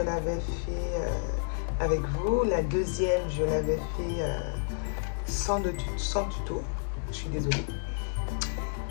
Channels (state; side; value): silent; right; digital silence